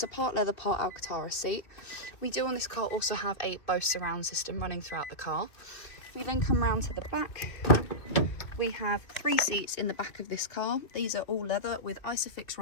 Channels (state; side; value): late; right; 2.6 ms